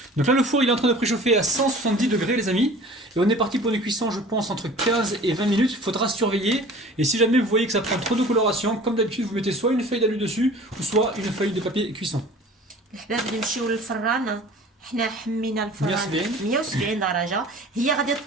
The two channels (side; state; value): both; normal; correlation 0.44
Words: Donc là, le four il est en train de préchauffer à 170 degrés, les amis. Et on est parti pour une cuisson, je pense, entre 15 et 20 minutes. Il faudra surveiller. Et si jamais vous voyez que ça prend trop de coloration, comme d'habitude, vous mettez soit une feuille d'alu dessus, ou soit une feuille de papier cuisson. الحباب نمشيو للفران. حنا حمينا الفران 170. 170 درجة. هي غادي